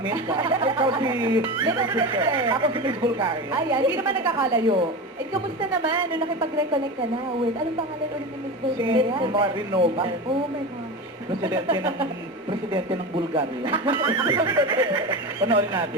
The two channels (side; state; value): both; normal; correlation 0.24